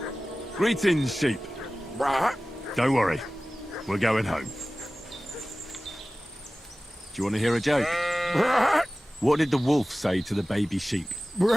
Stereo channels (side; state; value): both; normal; correlation 0.97